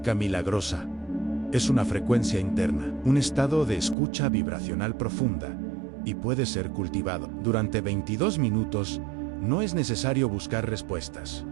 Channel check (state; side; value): drops out; left; at 4.0 s